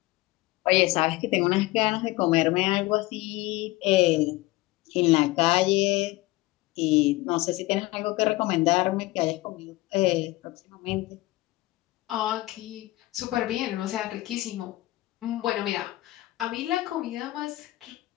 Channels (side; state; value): right; quieter; 19.3 dB